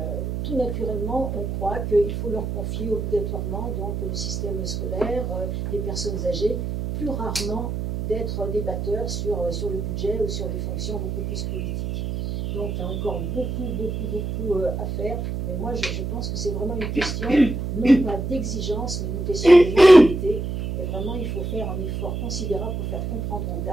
tout naturellement, on croit qu'il faut leur confier obligatoirement donc, le système scolaire, les personnes âgées, plus rarement d'être débatteurs sur le budget ou sur des fonctions beaucoup plus politiques. Donc il y a encore beaucoup à faire, mais moi je pense que c'est vraiment une question, non pas d'exigence, mais une question de mentalité. Et vraiment, il faut faire un effort considérable pour faire comprendre aux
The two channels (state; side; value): noise; right; hum, 3 dB below the sound